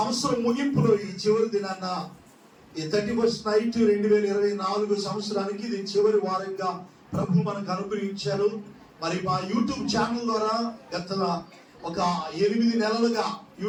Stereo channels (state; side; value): identical; both; correlation 1.00